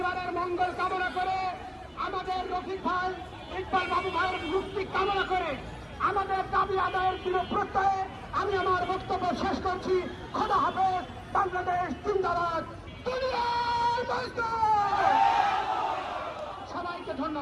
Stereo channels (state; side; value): identical; both; correlation 1.00